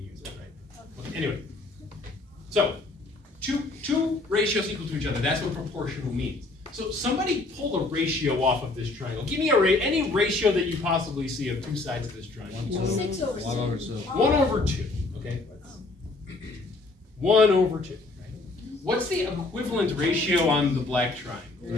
it, right? Okay, anyway, so two ratios equal to each other. That's what proportional means. So somebody pull a ratio off of this triangle. Give me any ratio that you possibly see of two sides of this triangle. 6 over 1 over 2. 1 over 2. Okay. 1 over 2. Right? What's the equivalent ratio on the black triangle?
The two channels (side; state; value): right; quieter; 3.2 dB